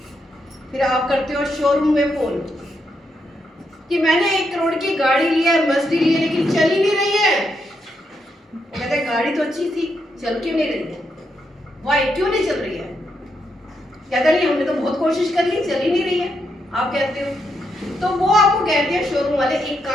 फिर आप करते हो शोरूम में फोन कि मैंने 1 करोड़ की गाड़ी ली है, मर्सिडीज ली है, लेकिन चल ही नहीं रही है। वो कहते हैं गाड़ी तो अच्छी थी, चल क्यों नहीं रही है, वाई क्यों नहीं चल रही है? कहता नहीं हमने तो बहुत कोशिश कर ली, चल ही नहीं रही है। आप कहते हो, तो वो आपको कहते हैं शोरूम वाले, एक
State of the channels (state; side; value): normal; both; correlation 0.81